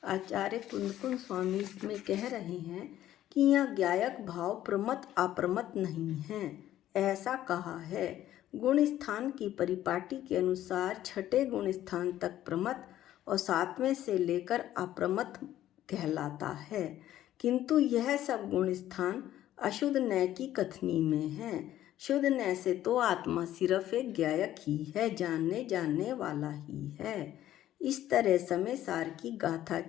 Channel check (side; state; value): right; quieter; 12.9 dB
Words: आचार्य कुंदकुंद स्वामी इसमें कह रहे हैं कि यह ज्ञायक भाव प्रमत अप्रमत नहीं है, ऐसा कहा है। गुण स्थान की परिपाटी के अनुसार छठे गुण स्थान तक प्रमत और सातवें से लेकर अप्रमत कहलाता है, किंतु यह सब गुण स्थान अशुद्ध नय की कथनी में है। शुद्ध नय से तो आत्मा सिर्फ एक ज्ञायक ही है, जानने जानने वाला ही है। इस तरह समय सार की गाथा